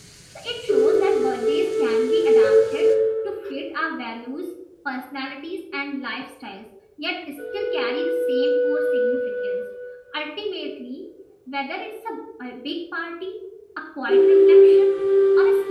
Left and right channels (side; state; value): both; identical; correlation 1.00